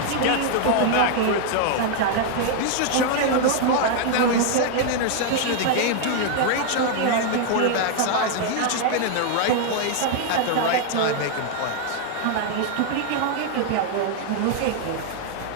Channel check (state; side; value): different; both; correlation 0.00